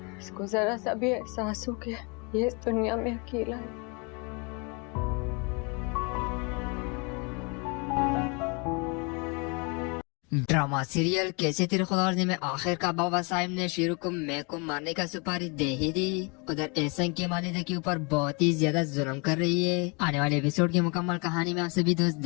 इसको जरा सा भी एहसास हो कि ये इस दुनिया में अकेला है। ड्रामा सीरियल कैसे तेरे खुदावंदी में आखिर का बाबा साहिब ने शेरू को मैं को मारने का सुपारी दे ही दी। उधर एहसन की मालिदा के ऊपर बहुत ही ज्यादा जुल्म कर रही है। आने वाले एपिसोड की मुकम्मल कहानी में आप सभी दोस्त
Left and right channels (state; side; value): quieter; right; 31.8 dB